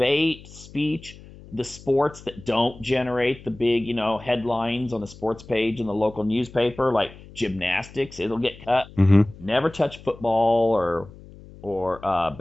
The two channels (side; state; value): left; noise; hum, 19 dB below the sound